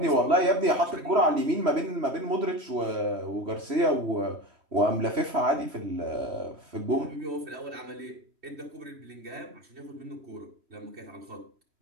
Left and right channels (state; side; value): late; left; 3.1 ms